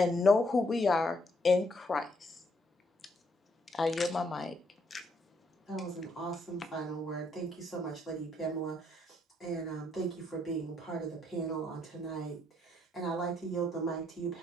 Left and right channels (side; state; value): both; normal; correlation 0.72